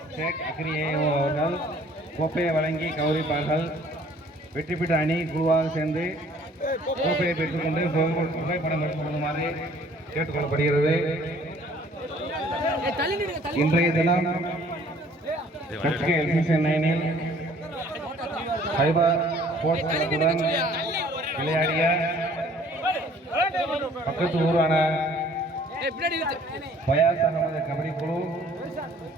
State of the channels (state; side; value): normal; both; correlation 0.56